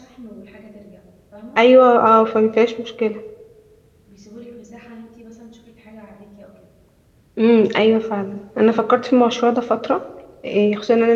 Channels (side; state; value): both; identical; correlation 1.00